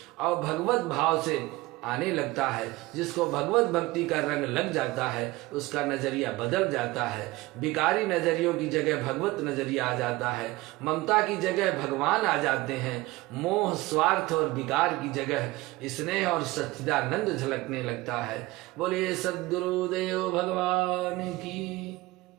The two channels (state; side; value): quieter; left; 20.1 dB